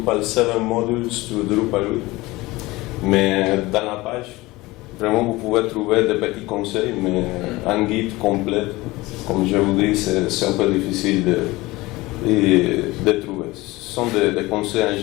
7 Modules to Drupal 8. Mais dans la page, vraiment vous pouvez trouver des petits conseils, mais un guide complet, comme je vous dis, c'est un peu difficile de trouver. Ce sont des conseils en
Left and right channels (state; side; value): quieter; right; 20.5 dB